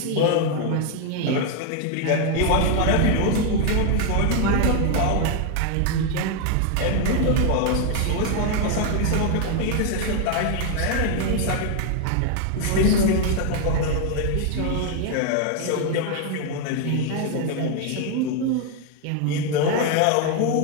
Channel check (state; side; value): different; both; correlation 0.00